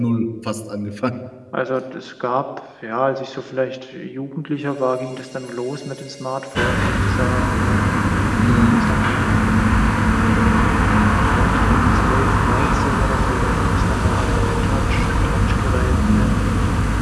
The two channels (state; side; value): identical; both; correlation 1.00